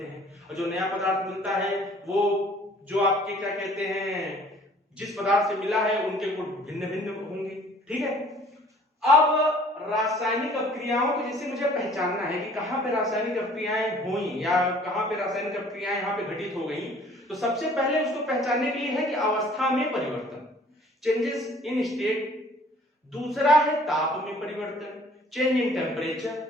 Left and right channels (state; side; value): normal; both; correlation 0.54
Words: हैं, और जो नया पदार्थ मिलता है वो जो आपके क्या कहते हैं, जिस पदार्थ से मिला है उनके गुण भिन्न भिन्न होंगे, ठीक है। अब रासायनिक प्रक्रियाओं को जैसे मुझे पहचानना है कि कहां पे रासायनिक प्रक्रियाएं हुई या कहां पे रासायनिक प्रक्रियाएं यहां पे घटित हो गई, तो सबसे पहले उसको पहचानने के लिए है कि अवस्था में परिवर्तन, चेंजेस इन स्टेट, दूसरा है ताप में परिवर्तन, चेंज इन टेम्परेचर,